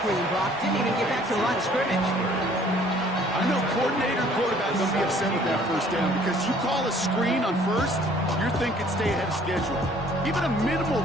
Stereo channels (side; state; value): both; normal; correlation 0.57